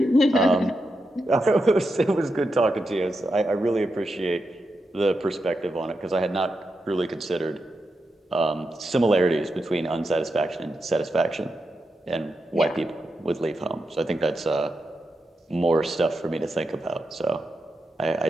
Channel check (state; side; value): normal; both; correlation 0.87